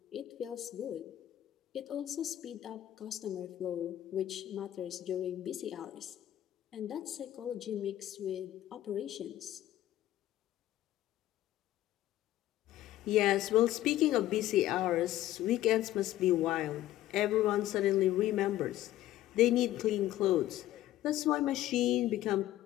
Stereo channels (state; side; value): quieter; right; 14.0 dB